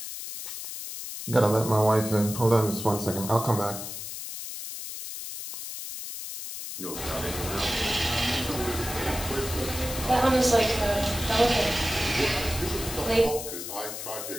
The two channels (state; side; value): noise; left; hiss, 8 dB below the sound